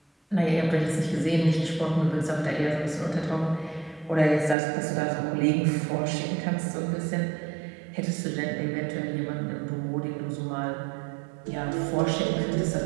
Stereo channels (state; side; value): drops out; left; at 4.5 s